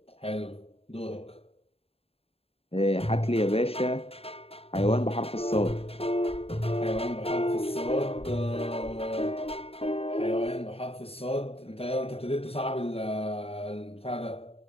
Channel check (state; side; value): late; right; 0.28 ms